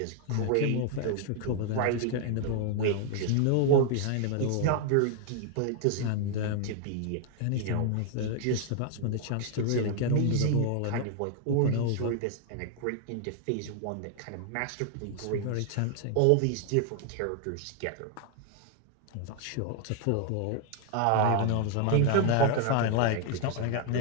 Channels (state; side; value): different; both; correlation 0.00